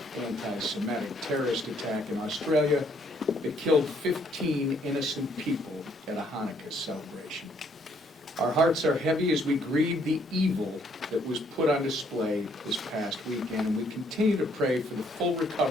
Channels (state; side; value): normal; both; correlation 0.67